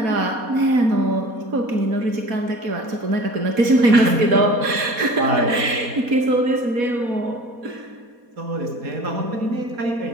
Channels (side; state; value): left; late; 4.2 ms